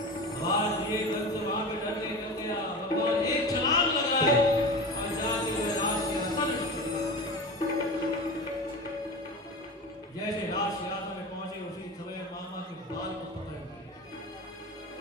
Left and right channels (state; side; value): normal; both; correlation 0.29